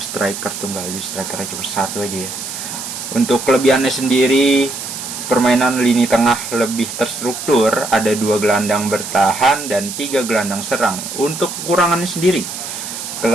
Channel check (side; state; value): right; noise; hiss, 8 dB below the sound